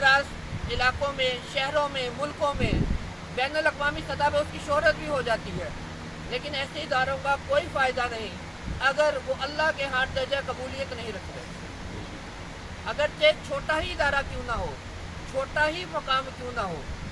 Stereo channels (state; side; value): identical; both; correlation 1.00